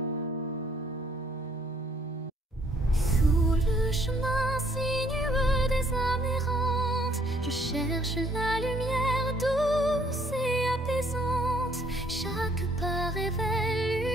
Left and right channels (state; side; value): normal; both; correlation 0.64